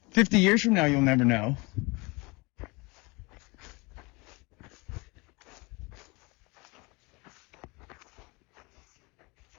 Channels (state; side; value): quieter; right; 26.6 dB